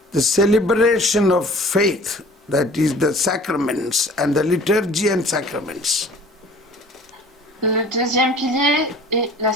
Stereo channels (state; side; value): normal; both; correlation 0.48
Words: the celebration of faith, that is the sacraments and the liturgy and sacraments. Le deuxième pilier est la